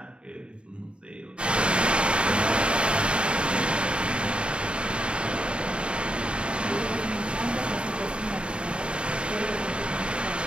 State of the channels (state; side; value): late; left; 0.054 ms